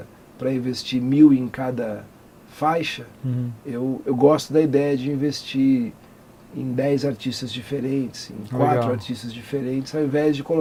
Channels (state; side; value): identical; both; correlation 1.00